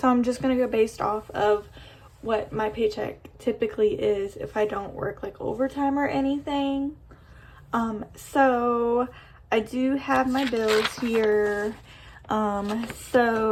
I'm just going to go based off of what my paycheck typically is if I don't work like overtime or anything. So I do have my bills here.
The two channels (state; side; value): identical; both; correlation 1.00